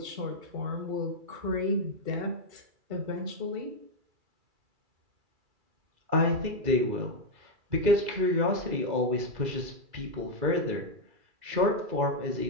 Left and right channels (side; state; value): left; late; 2.3 ms